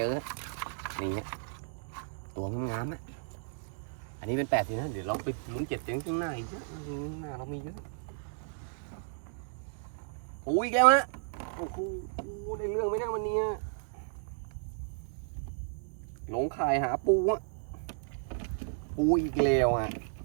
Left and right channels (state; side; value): silent; left; digital silence